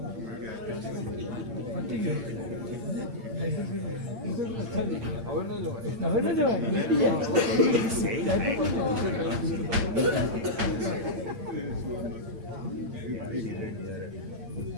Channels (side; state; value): left; late; 8.7 ms